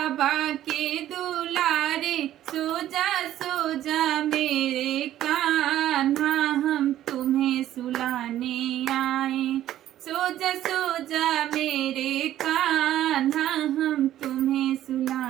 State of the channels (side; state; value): left; quieter; 12.7 dB